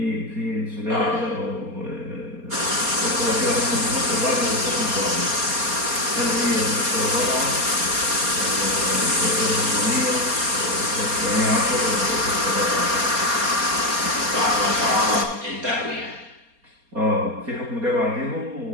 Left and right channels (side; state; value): left; late; 4.3 ms